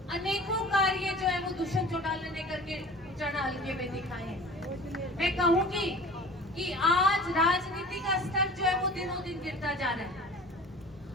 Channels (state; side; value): normal; both; correlation 0.42